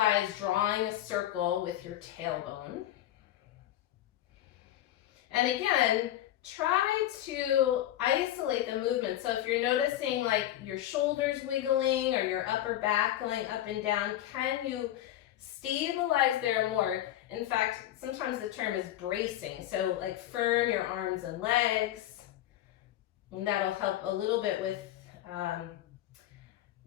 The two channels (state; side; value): quieter; right; 13.2 dB